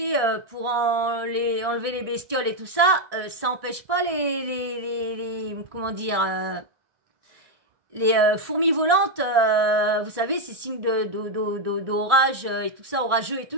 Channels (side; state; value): left; late; 1.6 ms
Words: pour enlever les bestioles et tout ça, ça empêche pas comment dire... les fourmis volantes, vous savez, c'est signe d'orage et tout ça, orageux et tout